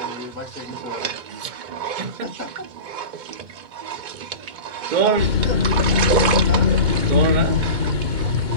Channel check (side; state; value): left; late; 2.1 ms